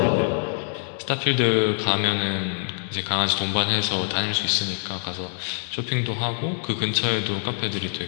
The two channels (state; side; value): silent; right; digital silence